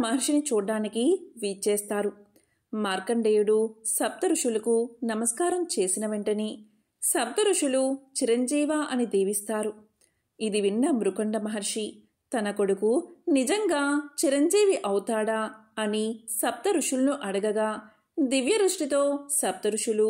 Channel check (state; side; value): identical; both; correlation 1.00